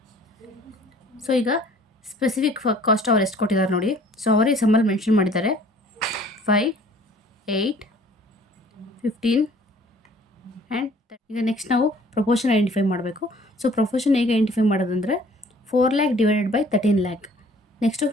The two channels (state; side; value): normal; both; correlation 0.54